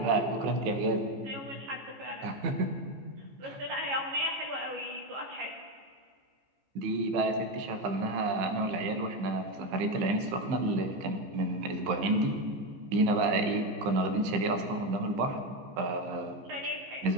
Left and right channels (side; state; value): left; late; 15 ms